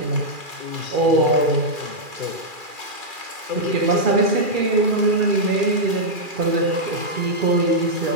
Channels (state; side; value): late; left; 2.4 ms